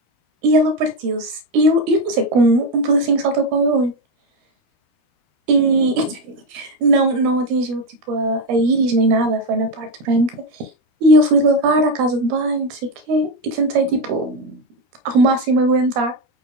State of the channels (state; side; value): late; left; 13 ms